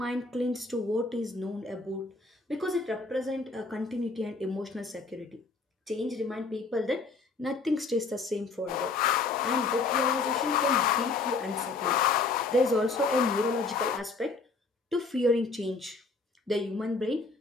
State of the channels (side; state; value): right; quieter; 3.9 dB